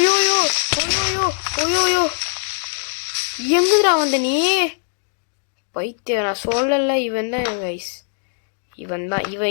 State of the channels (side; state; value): right; silent; digital silence